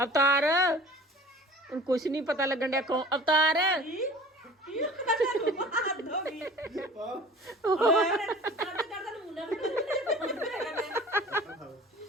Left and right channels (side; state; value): both; normal; correlation 0.44